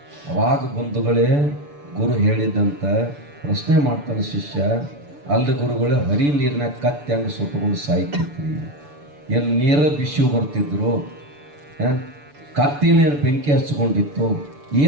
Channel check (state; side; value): late; left; 6.9 ms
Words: ಅವಾಗ ಬಂಧುಗಳೇ ಗುರು ಹೇಳಿದಂತ ಪ್ರಶ್ನೆ ಮಾಡ್ತಾನೆ ಶಿಷ್ಯ, ಅಲ್ಲಿ ಗುರುಗಳೇ ಹರಿ ನೀರಿನ ಕತ್ತಿ ಹಂಗೆ ಸುಟ್ಟುಕೊಂಡು ಸಾಯ್ತಿದ್ರಿ, ಎಲ್ಲಿ ನೀರ ಬಿಸಿ ಬರ್ತಿದ್ರು, ಕತ್ತಿನೇನು ಬೆಂಕಿ ಹಚ್ಕೊಂಡಿತ್ತು,